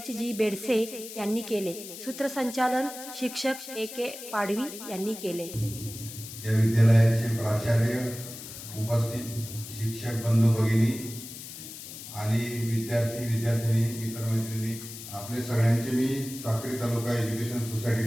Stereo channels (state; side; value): noise; left; hiss, 12 dB below the sound